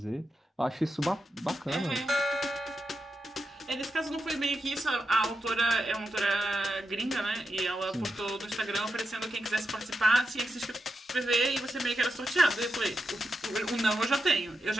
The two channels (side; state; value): both; normal; correlation 0.87